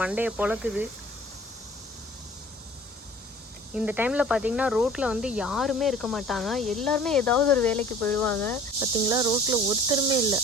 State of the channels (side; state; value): both; normal; correlation 0.47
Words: பொழக்குது. இந்த டைம்ல பாத்தீங்கன்னா ரோட்ல யாருமே இருக்க மாட்டாங்க, எல்லாருமே ஏதாவது ஒரு வேலைக்கு போயிடுவாங்க. பாத்தீங்களா, ரோட்ல ஒருத்தருமே இல்லை,